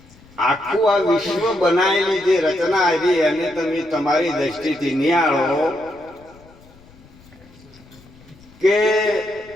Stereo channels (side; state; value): left; noise; rumble, 25 dB below the sound